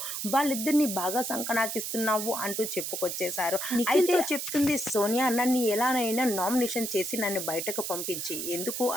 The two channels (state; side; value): noise; right; hiss, 4 dB below the sound